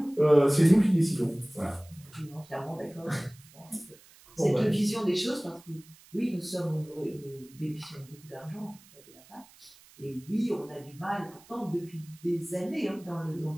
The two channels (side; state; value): right; noise; hiss, 25 dB below the sound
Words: c'est nous qui décidons. Voilà. Je suis entièrement d'accord. Cette vision des choses, parce que oui, nous bénéficions beaucoup d'argent dans le cadre de la PAC, et oui, on a du mal, pourtant, depuis des années, hein, dans le